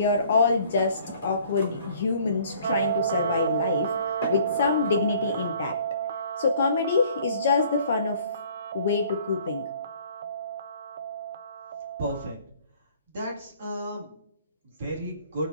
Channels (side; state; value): both; inverted; correlation -0.55